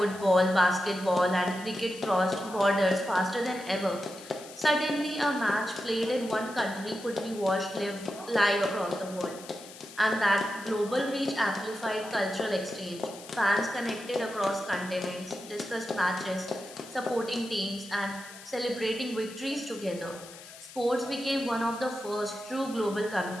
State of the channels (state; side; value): noise; left; hiss, 17 dB below the sound